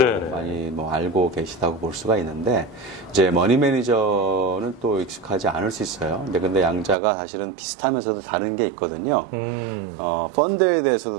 많이 뭐 알고 계시다고 볼 수가 있는데 이제 머니 매니저는 또 익숙하지 않을 수 있어요. 근데 양자가 사실은 비슷하면서도 다른 게 있거든요. 펀드에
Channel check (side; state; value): left; drops out; at 7.0 s